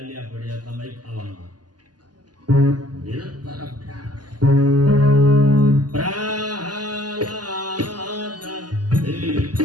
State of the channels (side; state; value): left; late; 0.70 ms